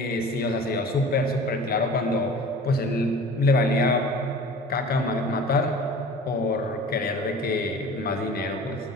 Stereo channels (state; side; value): normal; both; correlation 0.41